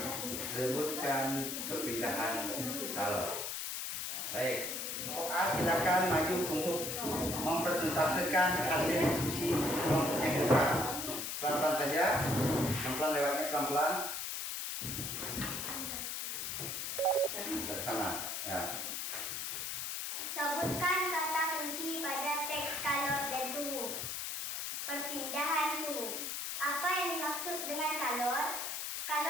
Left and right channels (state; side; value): noise; left; hiss, 3 dB below the sound